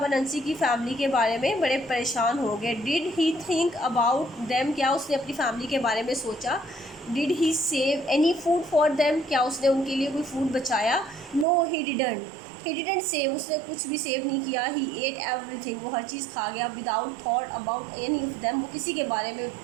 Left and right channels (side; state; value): left; drops out; at 11.5 s